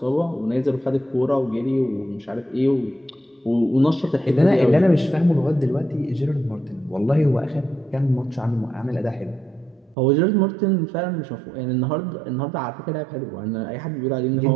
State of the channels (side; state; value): left; drops out; at 10.0 s